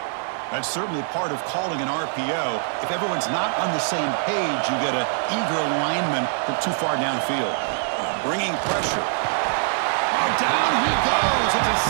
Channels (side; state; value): left; silent; digital silence